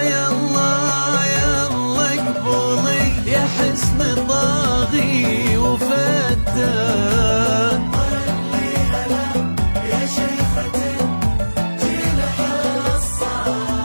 يا الله يا الله اقبلي يا حسن طاغي وفتان. طلي هلا يا شيخة الجيل حصة،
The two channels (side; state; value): both; inverted; correlation -1.00